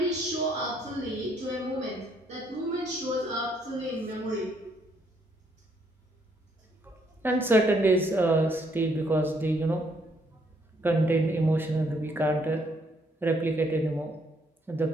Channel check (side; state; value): both; normal; correlation 0.70